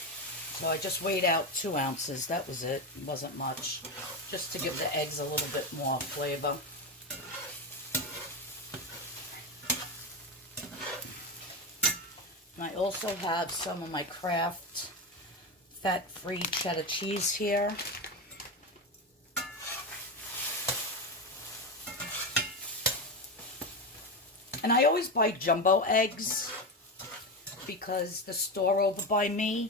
So I just weighed out 2 ounces. That was it. It wasn't much. Just to give the eggs a little bit more flavor. And I also have some of my Kraft fat-free cheddar cheese here. And I always buy jumbo eggs because the store over by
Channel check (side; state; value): both; normal; correlation 0.15